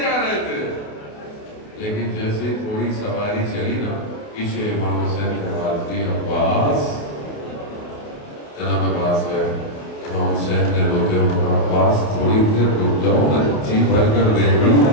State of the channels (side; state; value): right; late; 28 ms